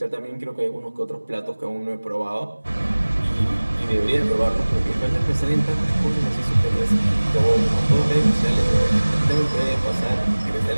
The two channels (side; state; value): both; inverted; correlation -1.00